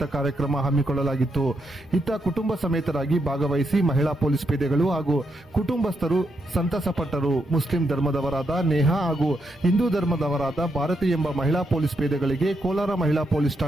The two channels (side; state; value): both; normal; correlation 0.81